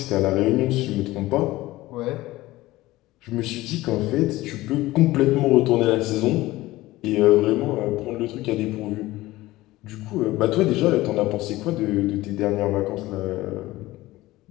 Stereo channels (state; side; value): quieter; right; 17.9 dB